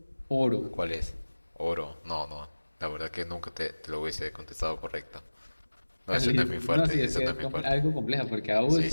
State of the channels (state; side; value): inverted; both; correlation -1.00